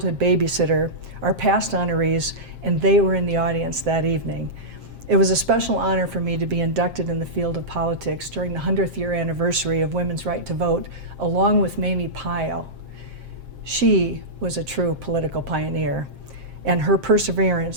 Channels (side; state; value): left; late; 7.6 ms